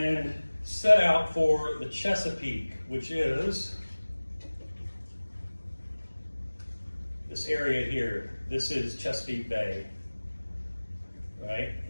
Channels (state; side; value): inverted; both; correlation -1.00